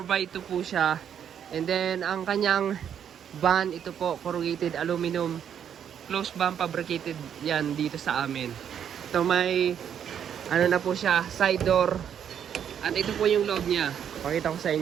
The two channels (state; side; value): quieter; left; 8.8 dB